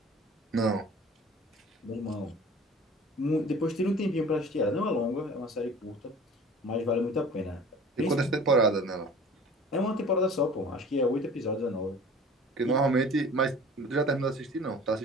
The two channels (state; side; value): normal; both; correlation 0.44